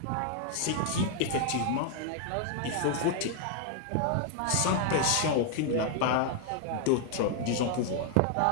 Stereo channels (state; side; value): different; both; correlation 0.00